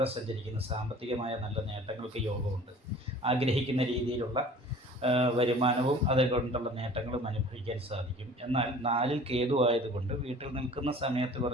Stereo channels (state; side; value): normal; both; correlation 0.46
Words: സഞ്ചരിക്കുന്നത്. സാമ്പത്തികമായ നല്ല നേട്ടങ്ങൾക്ക് യോഗമുണ്ട്. ആഗ്രഹിക്കുന്ന രീതിയിലുള്ള വരുമാനവും അതുകൊണ്ടുള്ള നേട്ടങ്ങളും അനുഭവിക്കാൻ സാധിക്കും. എന്നാൽ 4ൽ കേതു ആയതുകൊണ്ട് വീട്ടിൽ നിൽക്കുന്ന സമയത്ത്